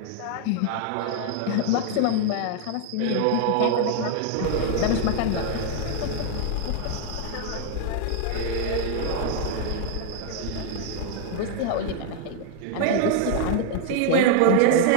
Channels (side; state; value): both; different; correlation 0.00